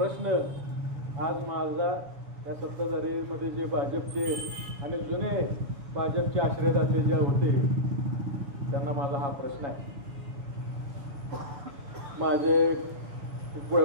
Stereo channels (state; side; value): late; left; 7.1 ms